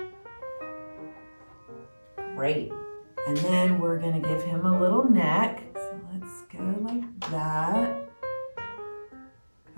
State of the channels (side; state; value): both; inverted; correlation -1.00